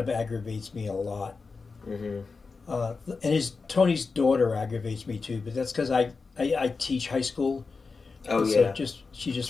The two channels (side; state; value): right; quieter; 4.5 dB